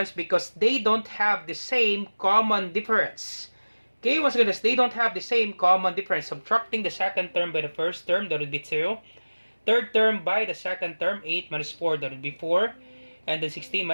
because they don't have the same common difference. Okay, once again, they don't have the same common difference. Subtracting the second term by the first term, that would be 2. Third term by the second term, 8 minus 4, that would be 4. And then 16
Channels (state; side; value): inverted; both; correlation -1.00